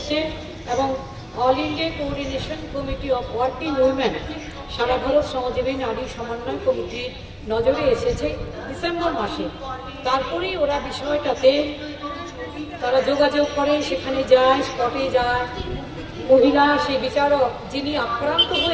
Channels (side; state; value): both; identical; correlation 1.00